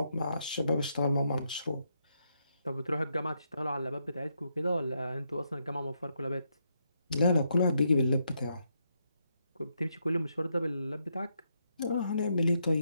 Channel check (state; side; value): inverted; both; correlation -0.79